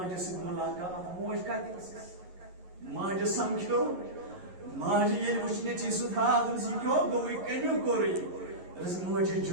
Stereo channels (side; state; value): left; late; 11 ms